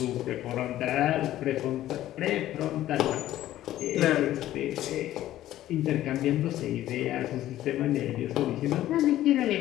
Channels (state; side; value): quieter; right; 13.7 dB